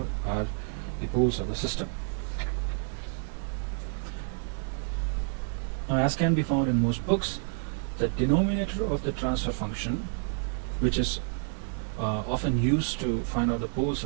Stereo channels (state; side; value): silent; left; 58 dB below the other